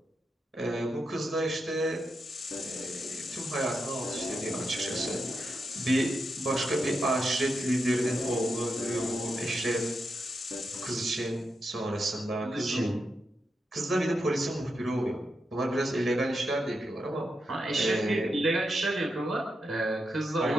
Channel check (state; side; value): normal; both; correlation 0.86